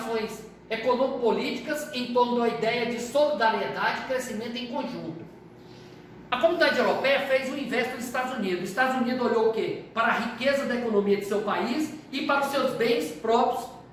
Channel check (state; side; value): identical; both; correlation 1.00